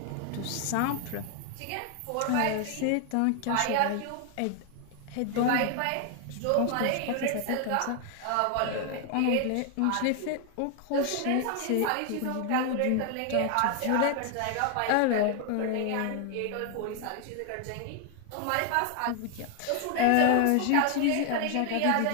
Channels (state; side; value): different; both; correlation 0.00